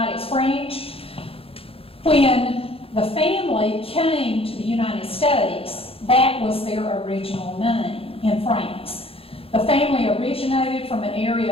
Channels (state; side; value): late; right; 0.27 ms